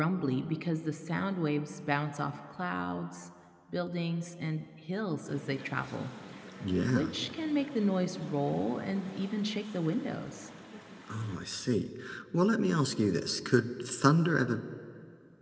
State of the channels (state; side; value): identical; both; correlation 1.00